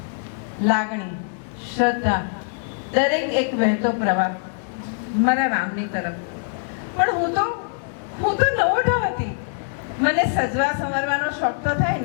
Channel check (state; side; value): silent; right; digital silence